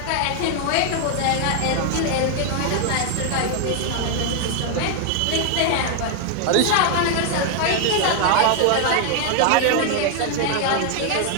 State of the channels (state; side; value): different; both; correlation 0.00